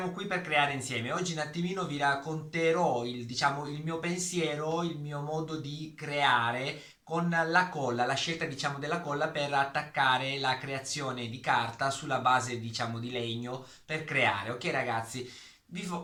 qui per creare insieme, oggi un attimino vi racconterò il mio pensiero, il mio modo di creare con la colla, la scelta della colla per attaccare la creazione di carta sulla base di legno per creare. Ok ragazzi,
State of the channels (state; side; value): identical; both; correlation 1.00